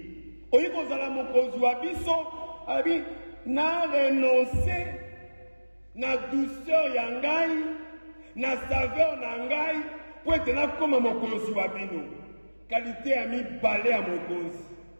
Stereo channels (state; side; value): inverted; both; correlation -1.00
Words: Oyi kozala mokonzi wa biso, abi na renoncer na douceur ya ngai, na saveur na ngai, po ete nakoma mokonzi wa bino. Qualité ya mibale ya mokonzi.